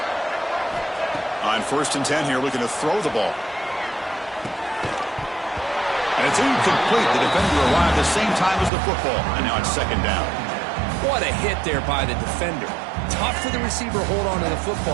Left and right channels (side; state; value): left; drops out; at 8.7 s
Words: On 1st and 10 here, looking to throw the ball. And it's incomplete. The defender arrived the same time as the football. And now it's 2nd down. What a hit there by the defender. Tough for the receiver to hold on to the